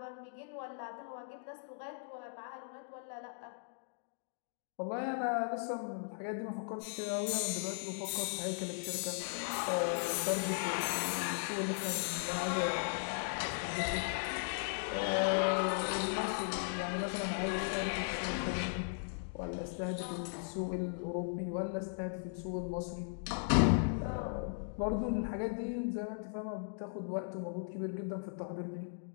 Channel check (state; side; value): silent; right; digital silence